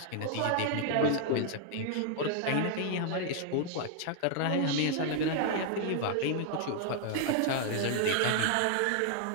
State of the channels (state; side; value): different; both; correlation 0.00